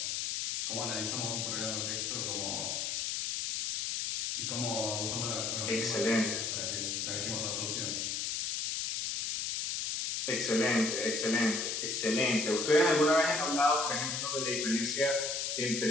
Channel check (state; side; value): noise; left; hiss, 1 dB below the sound